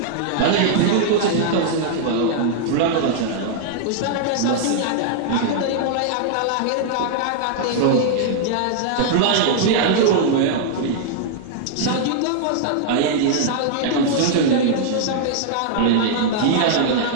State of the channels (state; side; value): different; both; correlation -0.01